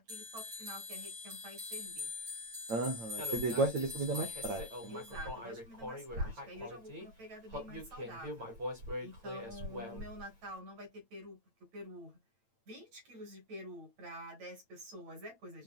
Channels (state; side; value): late; left; 8.9 ms